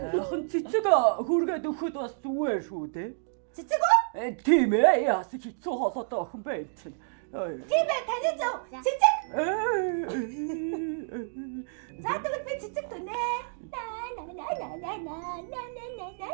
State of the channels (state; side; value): silent; left; digital silence